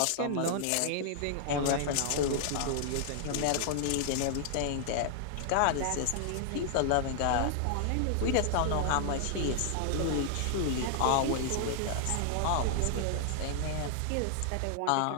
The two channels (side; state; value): both; different; correlation -0.01